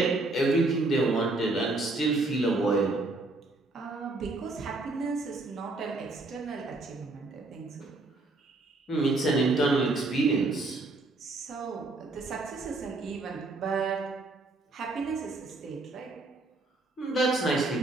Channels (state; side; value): quieter; left; 3.1 dB